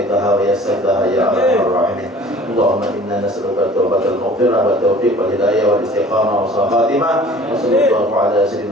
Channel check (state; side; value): normal; both; correlation 0.48